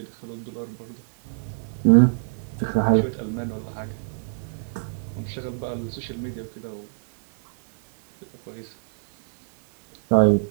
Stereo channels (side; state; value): left; silent; digital silence